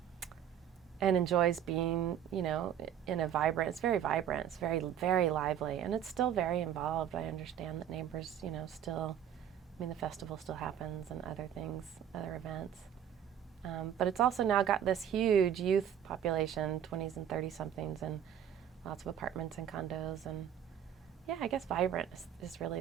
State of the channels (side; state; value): left; quieter; 9.5 dB